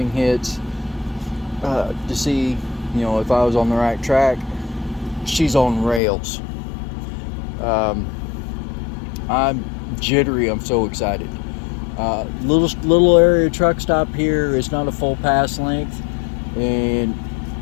hits to see, if I was on the right track. She's on rails. I'm jittery. I'm so excited. Little area truck stop here. It's not a full pass length, and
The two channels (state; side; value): drops out; right; at 6.0 s